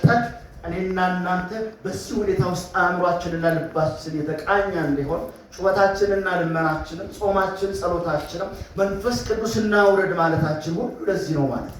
እኔና እናንተ በዚህ ሁኔታ ውስጥ አእምሯችንና ልባችን የተቃኘ እንዲሆን ጩኸታችንና ልመናችንም ጾማችን ጸሎታችንም መንፈስ ቅዱስና ውረድ ማለታችን ሁሉ ለዚህ ነው ማለት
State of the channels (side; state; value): both; identical; correlation 1.00